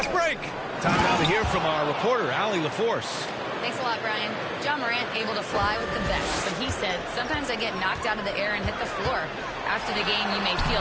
break. Time now to hear from our reporter, Allie LaForce. Thanks a lot, Brian. John Morant able to fly with the best, but he said, sometimes I get knocked out of the air and hit the floor. After the game, you may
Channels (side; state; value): both; identical; correlation 1.00